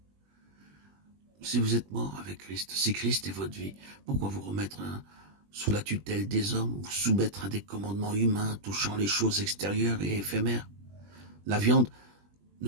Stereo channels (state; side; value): late; left; 20 ms